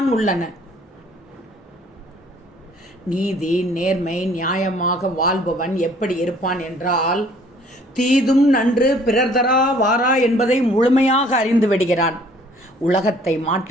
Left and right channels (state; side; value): normal; both; correlation 0.57